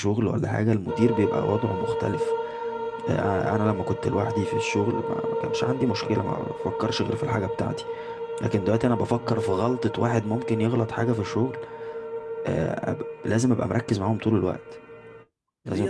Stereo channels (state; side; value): identical; both; correlation 1.00